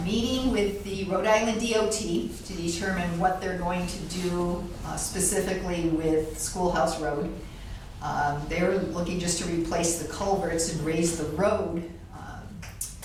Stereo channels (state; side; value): identical; both; correlation 1.00